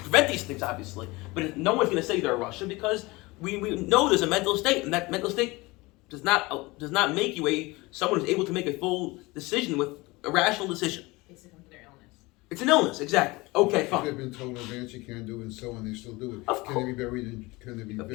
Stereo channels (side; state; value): right; quieter; 22.8 dB